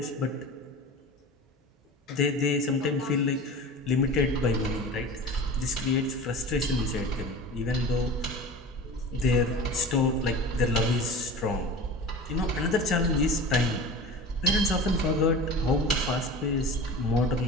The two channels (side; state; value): both; normal; correlation 0.35